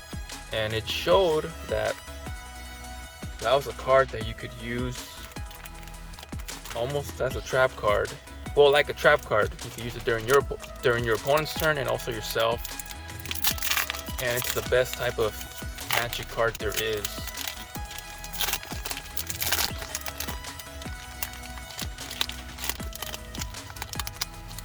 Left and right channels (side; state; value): both; identical; correlation 1.00